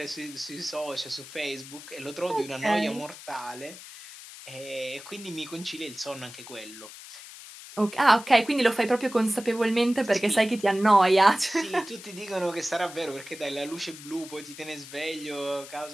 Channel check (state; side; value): noise; left; hiss, 15 dB below the sound